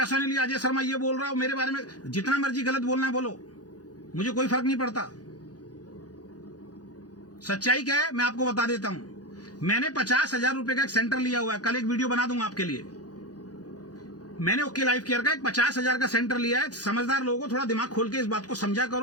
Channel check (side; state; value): right; late; 0.68 ms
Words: नहीं लिया, अजय शर्मा ये बोल रहा हूं मेरे बारे में, जितना मर्जी गलत बोलना है बोलो, मुझे कोई फर्क नहीं पड़ता। सच्चाई क्या है मैं आपको बता देता हूं। मैंने 50,000 रुपए का एक सेंटर लिया हुआ है, कल एक वीडियो बना दूंगा आपके लिए। मैंने ओके लाइफ केयर का एक 50,000 का सेंटर लिया है। समझदार लोगों को थोड़ा दिमाग खोल के इस बात को समझा